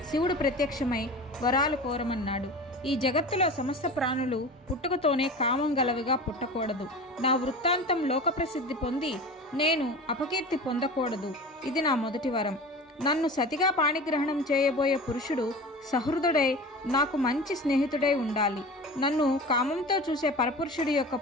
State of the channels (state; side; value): normal; both; correlation 0.34